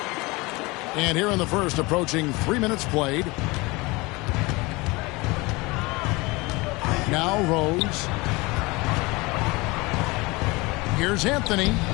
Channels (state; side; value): quieter; right; 24.0 dB